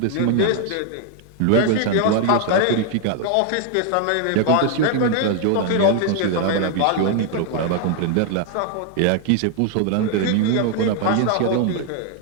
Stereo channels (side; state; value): both; different; correlation 0.00